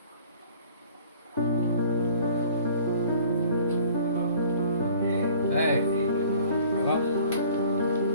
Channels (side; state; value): both; inverted; correlation -0.52